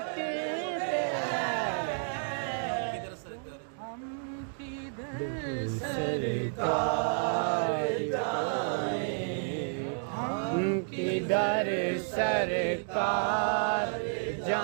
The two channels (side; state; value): left; silent; digital silence